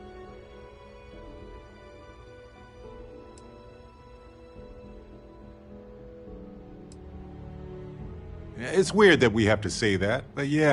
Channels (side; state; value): both; identical; correlation 1.00